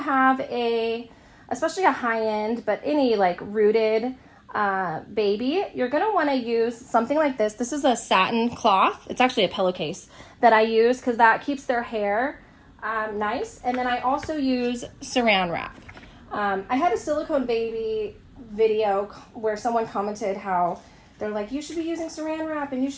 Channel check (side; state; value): both; identical; correlation 1.00